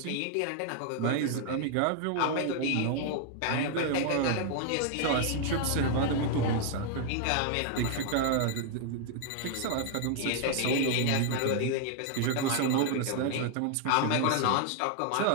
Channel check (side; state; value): both; different; correlation 0.00